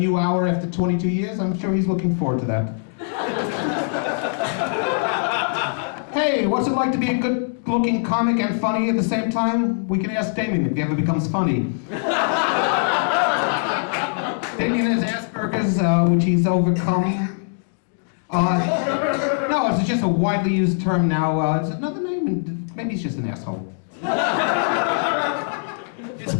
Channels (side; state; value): right; silent; digital silence